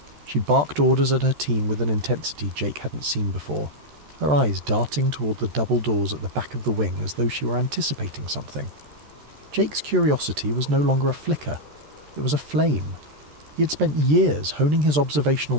She barked orders at her team with an intensity Jake hadn't seen before, her eyes darting toward the double doors at the back of the wing as though she were anticipating something. Jake's curiosity was no longer a flicker. It was a flame. He had spent years honing his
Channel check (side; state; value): left; late; 13 ms